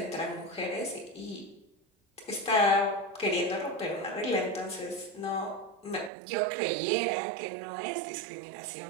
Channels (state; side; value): drops out; left; at 6.1 s